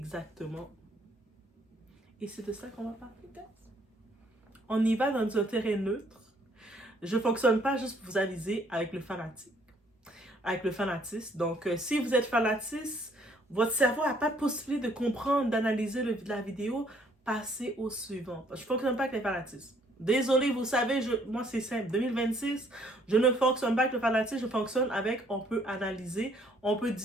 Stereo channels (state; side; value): normal; both; correlation 0.64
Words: Et c'est de ça qu'on va parler, guys. On y va dans un terrain neutre. Je ne fonctionne pas juste pour vous aviser avec le fanatisme. Donc, si vous êtes fanatiste, votre cerveau n'a pas de possibilité de comprendre, d'analyser la vidéo, passez au suivant. Je ne fonctionne pas avec les fanatismes. Désolé, vous savez, moi c'est simple. 2026, je ne fonctionne pas avec le fanatisme, je fonctionne avec, on peut analyser, on peut